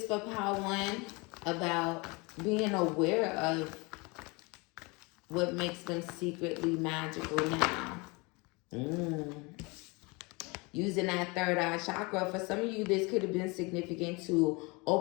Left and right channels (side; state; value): right; quieter; 27.3 dB